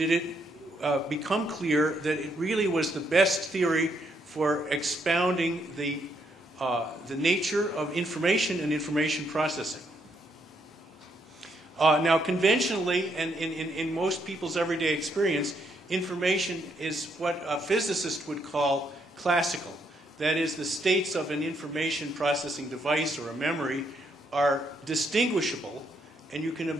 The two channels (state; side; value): normal; both; correlation 0.74